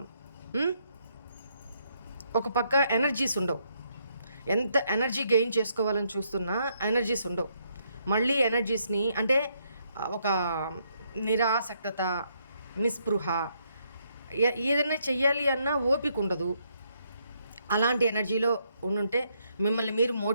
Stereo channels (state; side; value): inverted; both; correlation -0.74